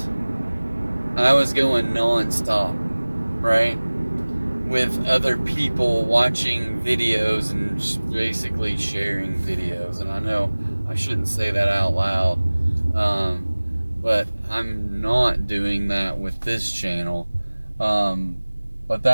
I was going non-stop, right? With other people watching videos and basically sharing videos. And I know I shouldn't say that out loud, but I'm not doing that with this channel. But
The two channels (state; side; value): inverted; both; correlation -1.00